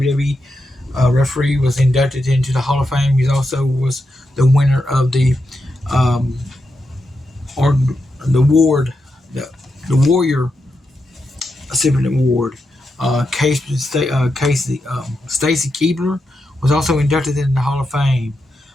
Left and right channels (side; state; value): both; normal; correlation 0.86